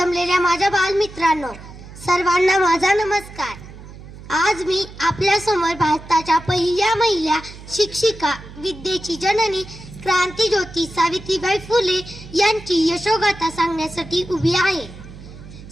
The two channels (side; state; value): right; noise; hum, 16 dB below the sound